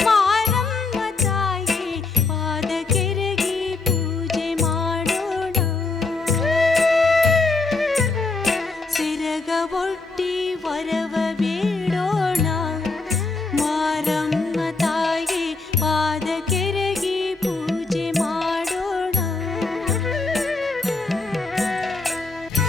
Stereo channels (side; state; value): right; quieter; 3.8 dB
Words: ಮಾರಮ್ಮ ತಾಯಿ ಪಾದ ಕೆರಗಿ ಪೂಜೆ ಮಾಡೋಣ. ಸಿರಗ ಒಟ್ಟಿ ವರವ ಬೇಡೋಣ. ಮಾರಮ್ಮ ತಾಯಿ ಪಾದ ಕೆರಗಿ ಪೂಜೆ ಮಾಡೋಣ.